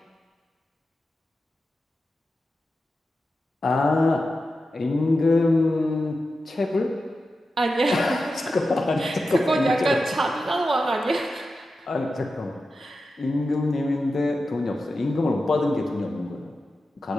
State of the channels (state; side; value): normal; both; correlation 0.91